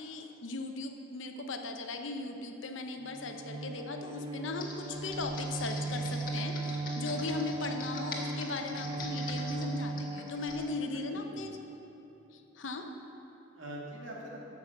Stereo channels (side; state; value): both; normal; correlation 0.40